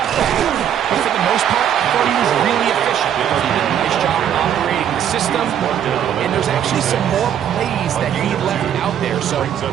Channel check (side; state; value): left; quieter; 9.6 dB